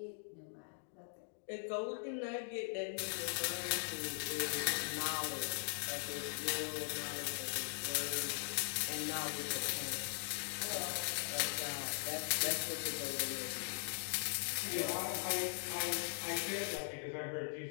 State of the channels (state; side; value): silent; right; digital silence